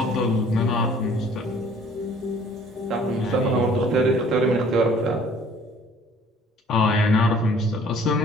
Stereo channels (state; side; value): normal; both; correlation 0.54